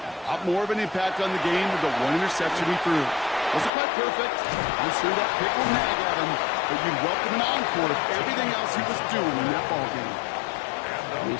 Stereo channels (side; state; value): right; drops out; at 3.7 s